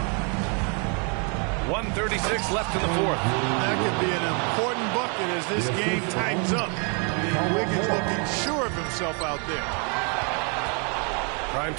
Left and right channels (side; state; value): left; quieter; 36.8 dB